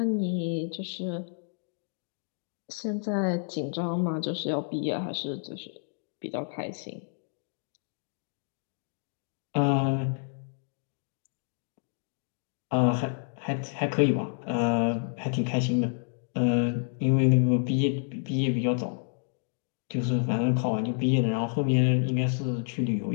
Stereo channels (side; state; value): right; silent; 58 dB below the other